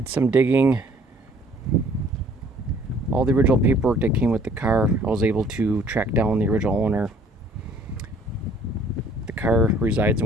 some digging. All the original paperwork that came with the car, I was able to track down the original owner. The car resides in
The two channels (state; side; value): normal; both; correlation 0.58